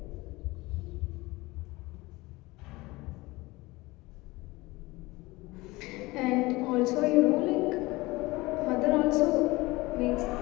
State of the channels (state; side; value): quieter; right; 21.4 dB